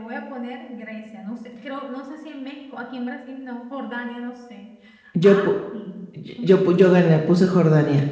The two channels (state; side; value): identical; both; correlation 1.00